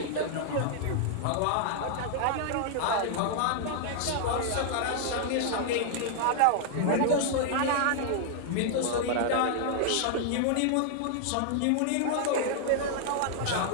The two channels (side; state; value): both; different; correlation -0.01